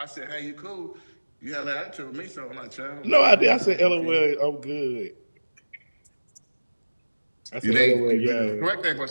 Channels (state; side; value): inverted; both; correlation -1.00